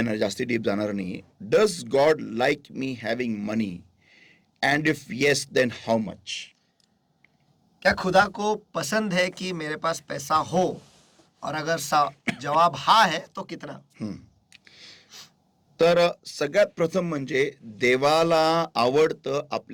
जास्ती डीप जाणार नाही. Does God like me having money, and if yes then how much? क्या खुदा को पसंद है कि मेरे पास पैसा हो, और अगर जवाब हा है तो कितना? तर सगळ्यात प्रथम म्हणजे देवाला आवडतं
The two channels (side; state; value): both; identical; correlation 1.00